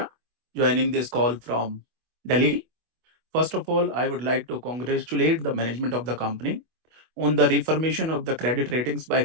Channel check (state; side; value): late; left; 25 ms